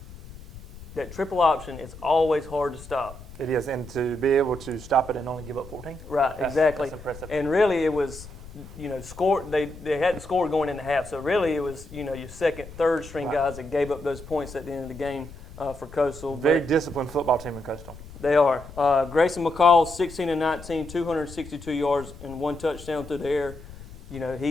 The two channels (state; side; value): noise; left; rumble, 16 dB below the sound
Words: option is always hard to stop. It is, and to be able to stop it and only give up 14. Right, exactly. That's impressive. And really, it was, score. They hadn't scored going into half, so really it was, your second, third string guys that gave up those points at the end of the game for Coastal. Very disciplined football team in Coastal. They are. Grayson McCall, 16-19, 262 yards and 1 touchdown through the air.